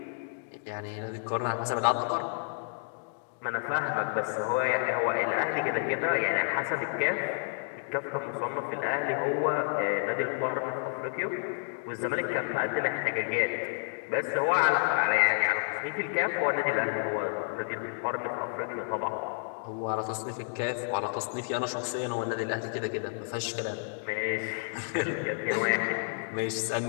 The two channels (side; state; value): right; silent; digital silence